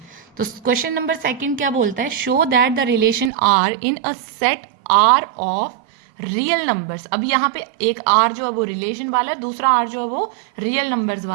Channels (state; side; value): drops out; left; at 3.3 s